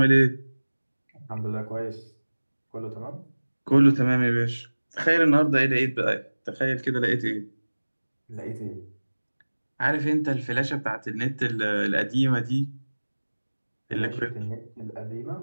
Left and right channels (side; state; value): both; inverted; correlation -1.00